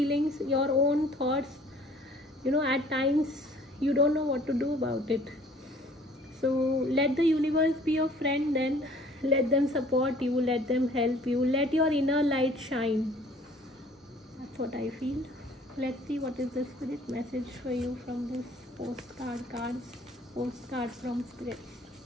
your own thoughts, at times you don't know what to do about it. So let the universe be your friend then. Let them support you, let them help you, let your inner light shine. That's what I feel. Let's see what is the spirit message for you from this postcard from spirit.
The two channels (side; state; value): both; normal; correlation 0.54